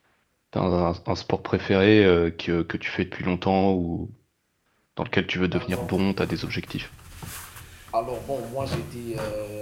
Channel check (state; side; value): identical; both; correlation 1.00